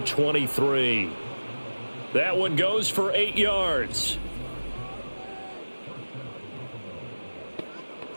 23. That one goes for 8 yards.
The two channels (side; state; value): both; inverted; correlation -1.00